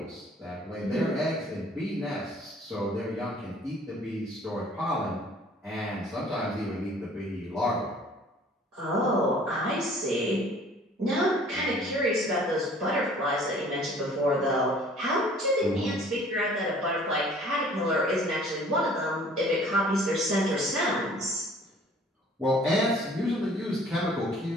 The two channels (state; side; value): normal; both; correlation 0.53